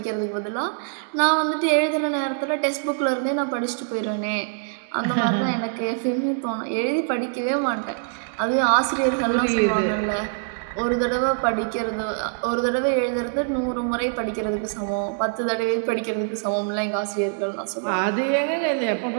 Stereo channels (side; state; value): left; silent; digital silence